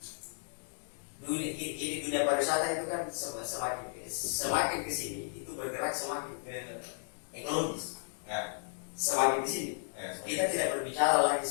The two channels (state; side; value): silent; right; digital silence